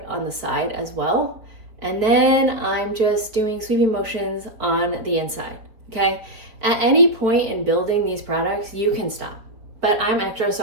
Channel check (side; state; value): left; late; 4.4 ms